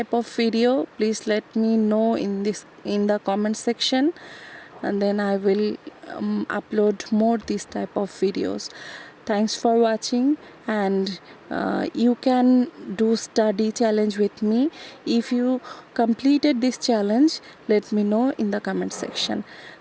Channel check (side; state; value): both; identical; correlation 1.00